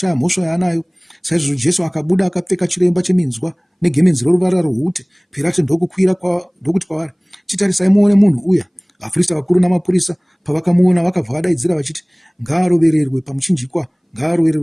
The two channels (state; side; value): identical; both; correlation 1.00